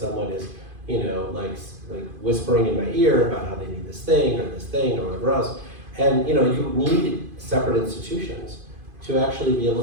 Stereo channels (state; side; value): late; left; 2.5 ms